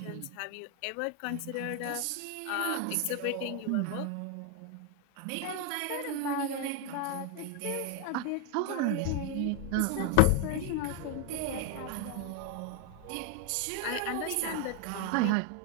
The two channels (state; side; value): different; both; correlation 0.01